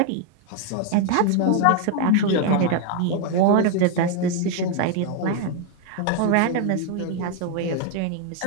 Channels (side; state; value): both; different; correlation 0.01